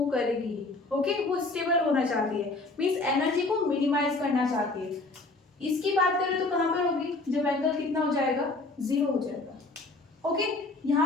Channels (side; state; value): right; quieter; 3.2 dB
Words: करेगी। ओके, वो स्टेबल होना चाहती है, मीन्स एनर्जी को मिनिमाइज करना चाहती है। इसकी बात करें तो कहाँ पर होगी, जब एंगल कितना हो जाएगा, 0 हो जाएगा। ओके,